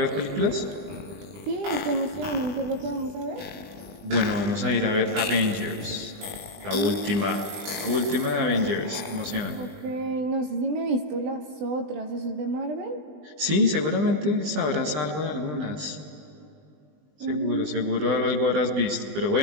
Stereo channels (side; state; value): left; late; 20 ms